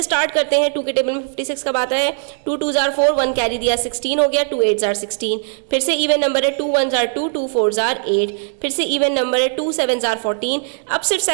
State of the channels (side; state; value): left; silent; digital silence